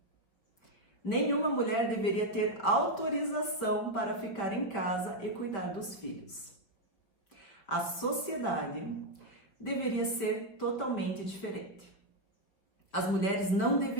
Nenhuma mulher deveria ter autorização para ficar em casa e cuidar dos filhos. A sociedade deveria ser totalmente diferente. As mulheres não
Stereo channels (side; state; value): right; late; 5.3 ms